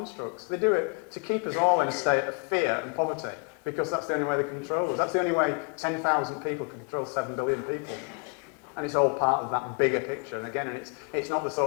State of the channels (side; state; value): right; quieter; 38.9 dB